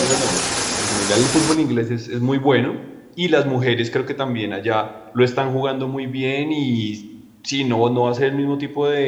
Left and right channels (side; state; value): both; identical; correlation 1.00